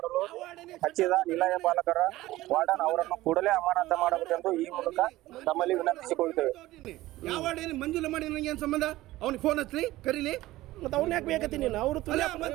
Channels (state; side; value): quieter; left; 17.0 dB